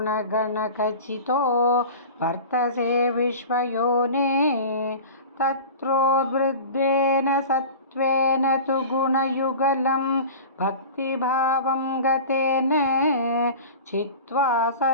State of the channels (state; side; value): inverted; both; correlation -0.35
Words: वर्तसे विश्वयोने। तत्रोद्वृद्देन सत्त्वेन तु गुणयुगलं भक्तिभावं गतेन छित्त्वा